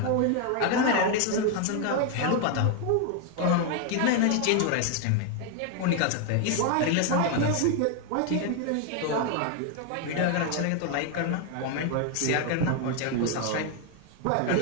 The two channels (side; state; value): both; different; correlation 0.01